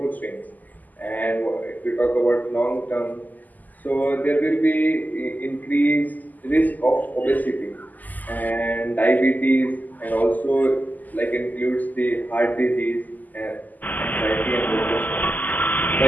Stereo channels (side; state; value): right; late; 0.082 ms